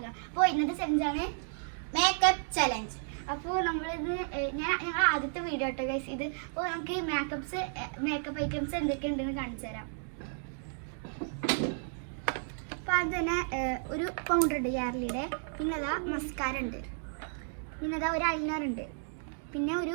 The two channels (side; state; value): left; silent; digital silence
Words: അപ്പോൾ ഇന്നത്തെ ചലഞ്ചാണ് മേക്കപ്പ് ചലഞ്ച്. അപ്പോൾ നമ്മളിത് ഞങ്ങൾ ആദ്യത്തെ വീഡിയോ കേട്ടോ ഗൈസ് ഇത്. അപ്പോൾ നമുക്ക് മേക്കപ്പ് ഐറ്റംസ് എന്തൊക്കെയുണ്ടെന്ന് കാണിച്ചു തരാം. അപ്പോൾ അത് തന്നെ ഒരു പൗഡർ ഉണ്ട് യാർലിയുടെ, പിന്നെ അതാ മസ്കാര ഉണ്ട്, പിന്നെ അതാ ഒരു ഐലൈനർ ഉണ്ട്, പിന്നെ